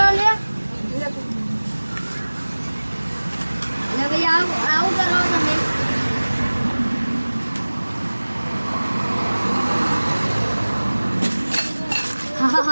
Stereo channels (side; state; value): both; inverted; correlation -1.00